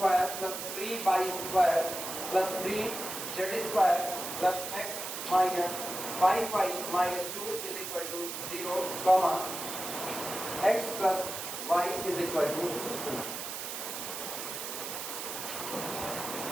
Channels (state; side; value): noise; right; hiss, 6 dB below the sound